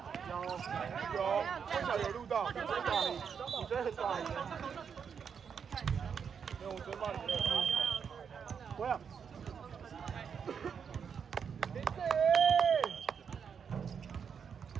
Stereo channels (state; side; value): quieter; left; 6.8 dB